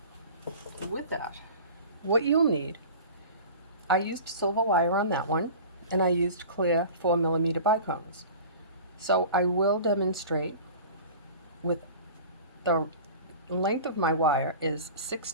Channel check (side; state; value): both; inverted; correlation -0.38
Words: with that, what you'll need, I used silver wire on that one, and I used clear 4mm bicones. So I will demonstrate with the length of my wire is